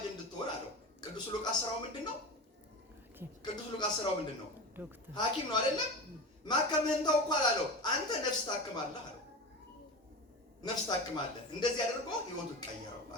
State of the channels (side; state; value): both; normal; correlation 0.27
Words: እንድትሆን አለው። ቅዱስ ሉቃስ ስራው ምንድነው? ሐኪም ነው አይደለም? ማከምህን ተው እኮ አላለው። አንተ ነፍስ ታክማለህ አለው። ነፍስ ታክማለህ። እንደዚህ አድርጎ ህይወቱ ቀየረው